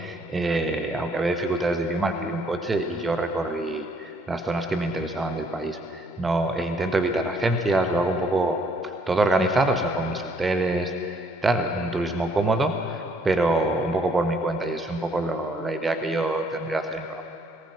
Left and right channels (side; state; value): both; normal; correlation 0.65